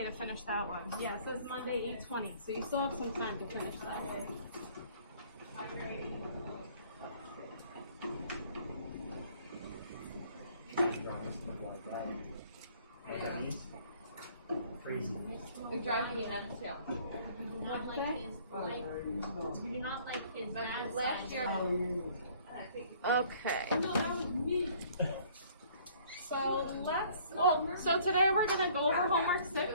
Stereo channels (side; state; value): both; inverted; correlation -0.57